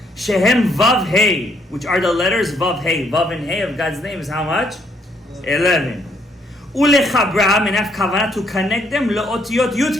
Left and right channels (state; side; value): normal; both; correlation 0.70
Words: Shehem vav hey, which are the letters vav hey. Vav and hey of God's name is how much? 11. Ulechabram, and have kavanah to connect them leotiyot